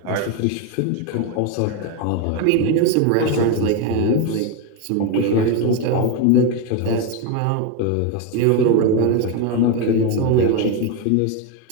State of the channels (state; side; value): different; both; correlation 0.02